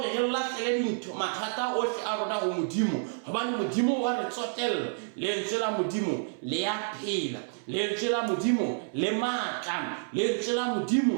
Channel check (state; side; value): silent; left; 58 dB below the other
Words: re lahlele dintho mathata ohle a rona ho Modimo, hobane Modimo wa re tsotella. Lentswe la Modimo le ya phela, lentswe la Modimo le matla, lentswe la